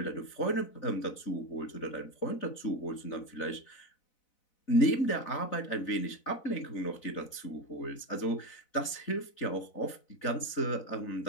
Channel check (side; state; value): right; late; 4.0 ms